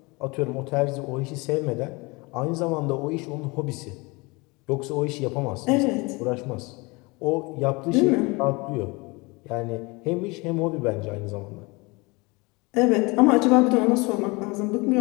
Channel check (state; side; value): quieter; right; 26.0 dB